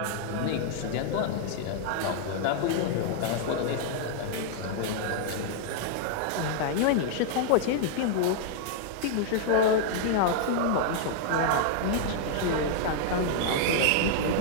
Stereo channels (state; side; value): different; both; correlation -0.01